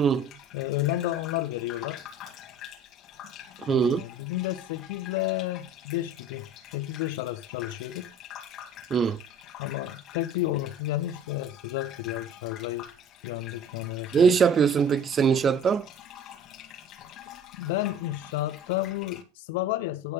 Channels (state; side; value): normal; both; correlation 0.45